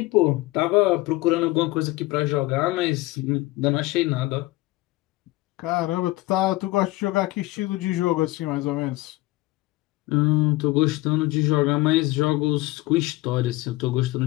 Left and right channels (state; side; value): quieter; right; 19.5 dB